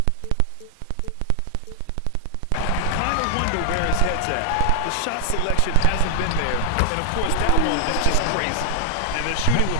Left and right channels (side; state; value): both; different; correlation 0.00